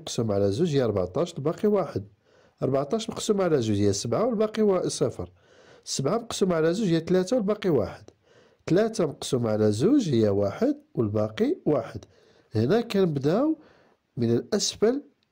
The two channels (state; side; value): identical; both; correlation 1.00